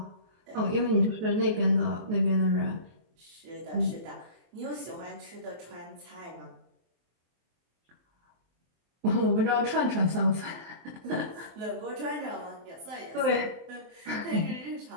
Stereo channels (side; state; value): left; late; 23 ms